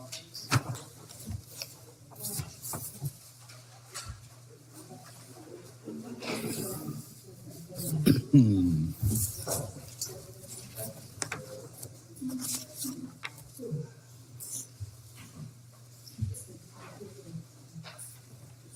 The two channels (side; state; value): both; identical; correlation 1.00